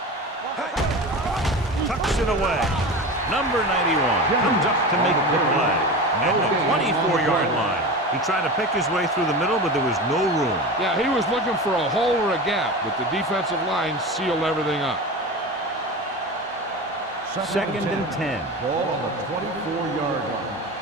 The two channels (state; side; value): normal; both; correlation 0.28